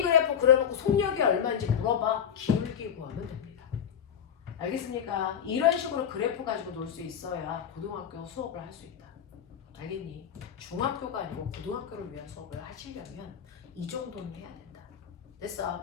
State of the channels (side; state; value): right; quieter; 8.4 dB